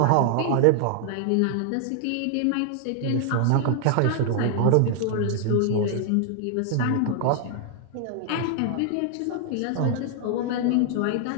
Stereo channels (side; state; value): both; different; correlation 0.00